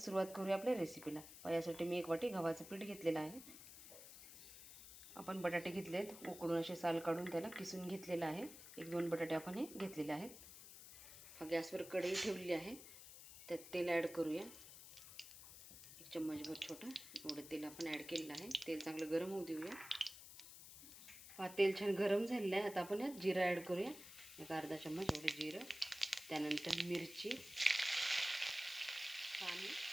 करूया आपल्या रेसिपीला. यासाठी मी 1 वाटी गव्हाचं पीठ घेतलेलं आहे. आपण बटाटे घेतलेत, उकडून असे साल काढून त्याला किसून घेतलेलं आहे. 1-2 बटाटे आपण हे घेतलेले आहेत. गॅसवर कढई ठेवलेली आहे, त्यात तेल ॲड करूया. 1 चम्मचभर छोटा एवढं तेल आपण ॲड केलेलं आहे. तेल चांगलं गरम होऊ देऊया. तेल छान गरम झालेलं आहे. आता आपण यात जिरं ॲड करूया. 1 अर्धा चम्मच एवढं जिरं, त्यानंतर मिरची, आणि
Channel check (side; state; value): left; noise; hiss, 14 dB below the sound